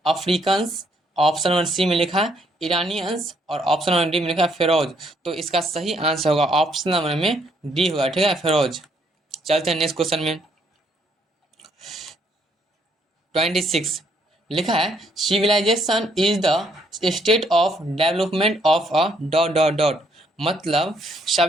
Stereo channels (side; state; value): both; normal; correlation 0.70